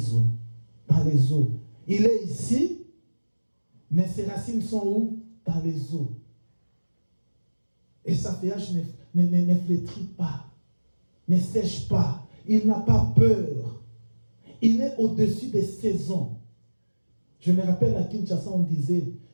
eaux. Dans les eaux. Il est ici, mais ses racines sont où? Dans les eaux. Et sa feuillage ne flétrit pas, ne sèche pas. Il n'a pas peur. Il est au-dessus des saisons. Je me rappelle à Kinshasa, on disait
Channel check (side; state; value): both; inverted; correlation -1.00